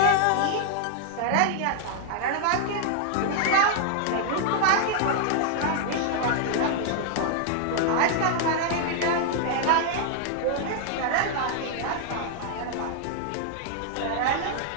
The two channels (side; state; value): both; different; correlation -0.01